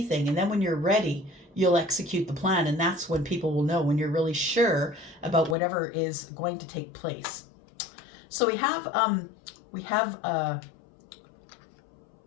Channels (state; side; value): drops out; right; at 5.6 s